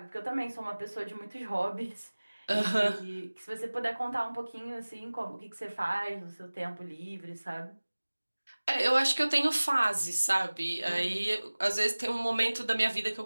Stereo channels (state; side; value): inverted; both; correlation -1.00